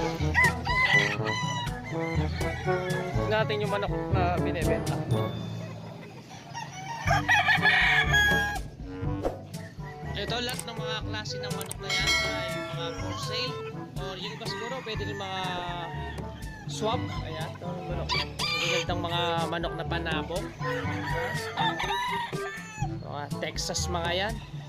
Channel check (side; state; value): both; identical; correlation 1.00